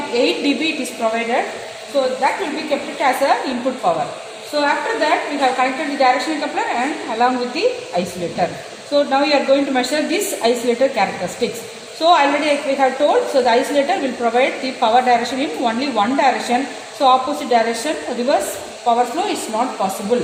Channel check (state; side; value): identical; both; correlation 1.00